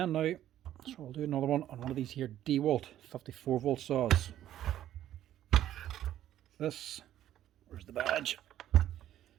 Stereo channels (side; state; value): left; quieter; 12.2 dB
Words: now, so we'll do another one on one of these here Dewalt 54 volt saws. This, where's the badge,